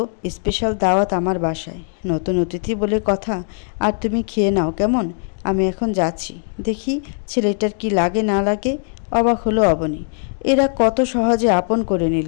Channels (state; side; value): silent; right; 60 dB below the other